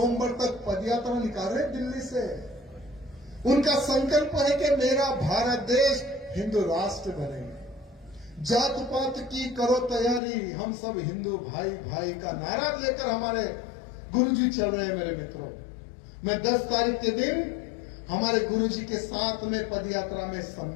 तक पदयात्रा निकाल रहे दिल्ली से। उनका संकल्प है कि मेरा भारत देश हिंदू राष्ट्र बने। जात पात की करो तैयारी, हम सब हिंदू भाई भाई का नारा लेकर हमारे गुरुजी चल रहे हैं मेरे मित्रों। मैं 10 तारीख के दिन हमारे गुरुजी के साथ में पदयात्रा में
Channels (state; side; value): drops out; right; at 10.2 s